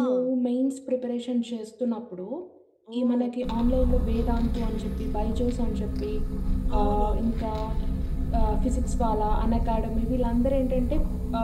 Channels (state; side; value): identical; both; correlation 1.00